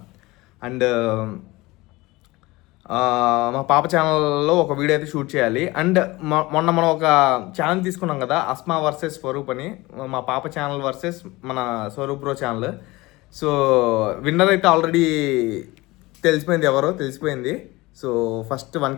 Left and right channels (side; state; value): right; quieter; 21.1 dB